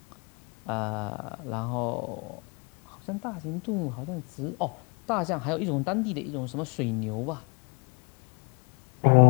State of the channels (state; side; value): quieter; right; 31.6 dB